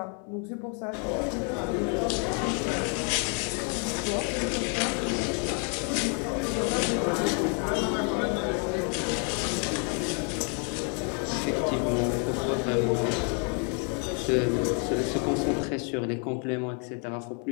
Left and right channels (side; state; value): right; quieter; 39.4 dB